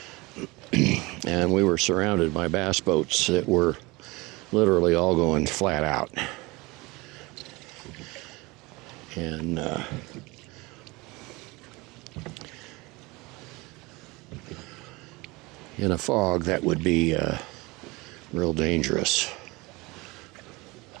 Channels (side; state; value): left; quieter; 23.7 dB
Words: And we were surrounded by bass boats that were literally all going flat out. And in a fog, that would be real dangerous.